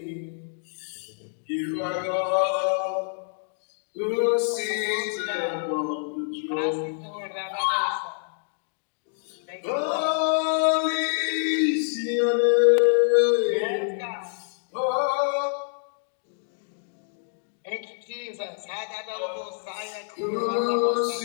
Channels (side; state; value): right; silent; digital silence